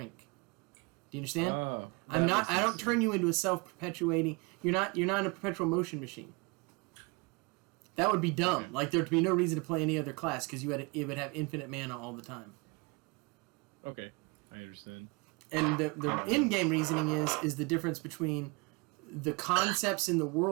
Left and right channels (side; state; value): left; quieter; 28.9 dB